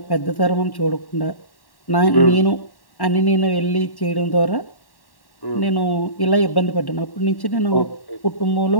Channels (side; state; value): right; late; 1.1 ms